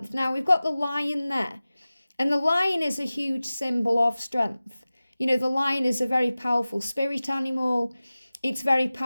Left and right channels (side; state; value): both; inverted; correlation -0.97